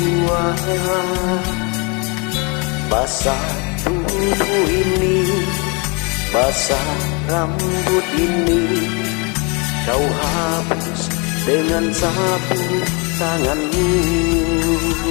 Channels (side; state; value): right; quieter; 31.5 dB